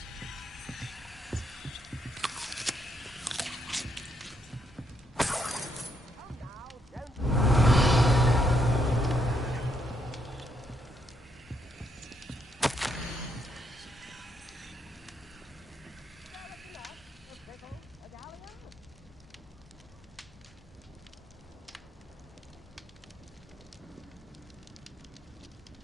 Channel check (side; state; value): both; normal; correlation 0.75